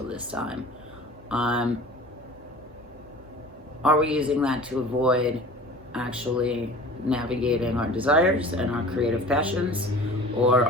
this time, are we using that to avoid actually navigating our desires and our creative passions or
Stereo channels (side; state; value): both; normal; correlation 0.42